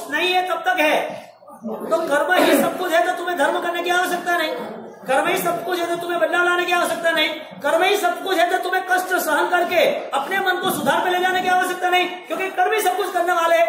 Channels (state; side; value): identical; both; correlation 1.00